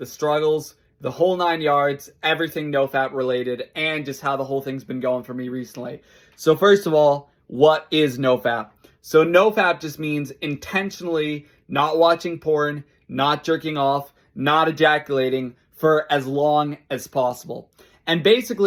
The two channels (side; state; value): both; identical; correlation 1.00